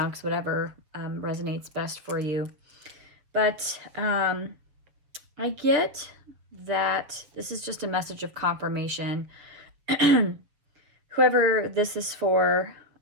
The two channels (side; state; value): left; late; 6.9 ms